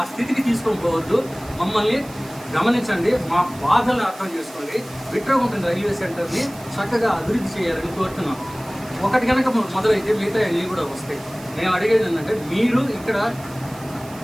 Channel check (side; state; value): right; noise; hiss, 20 dB below the sound